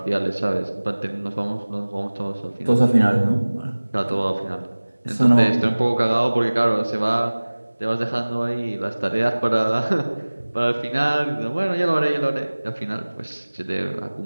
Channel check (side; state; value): both; inverted; correlation -1.00